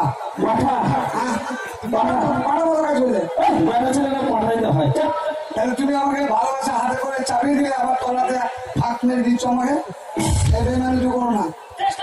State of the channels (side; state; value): both; identical; correlation 1.00